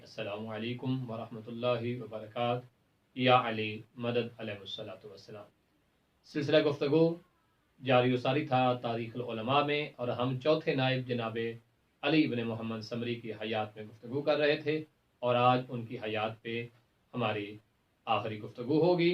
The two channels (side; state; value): both; identical; correlation 1.00